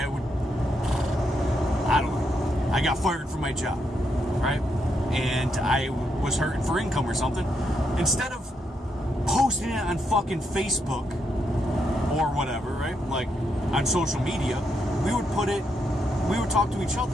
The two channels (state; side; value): normal; both; correlation 0.80